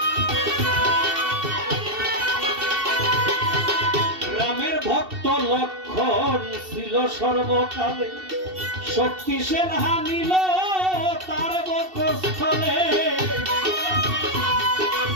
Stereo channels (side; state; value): left; late; 2.7 ms